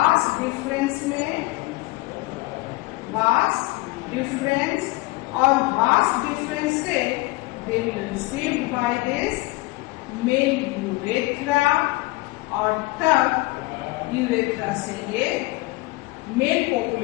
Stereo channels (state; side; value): quieter; right; 22.7 dB